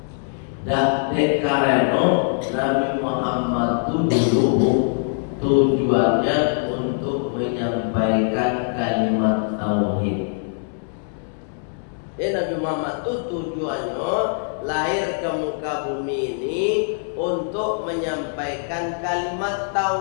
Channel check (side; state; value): right; silent; 64 dB below the other